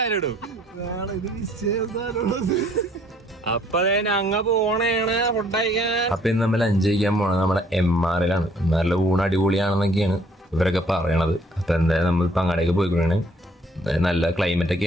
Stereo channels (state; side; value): normal; both; correlation 0.61